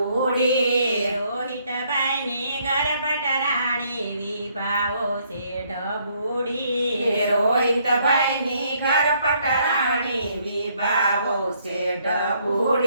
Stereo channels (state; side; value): inverted; both; correlation -0.68